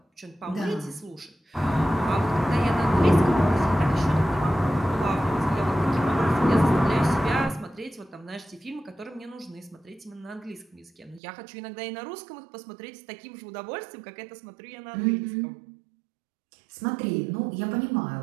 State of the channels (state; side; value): drops out; left; at 11.2 s